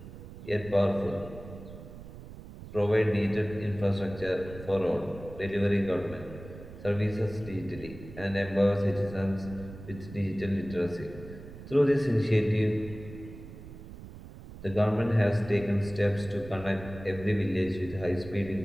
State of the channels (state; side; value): noise; right; rumble, 14 dB below the sound